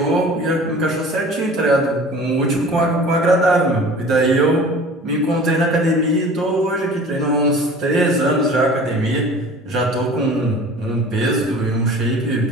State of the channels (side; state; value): both; normal; correlation 0.43